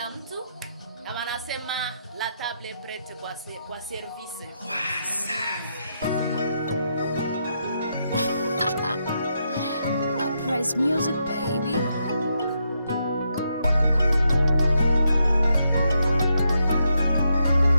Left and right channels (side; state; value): both; inverted; correlation -0.80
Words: mtu. Na wanasema la table est prête kwa service. Uprise music baby.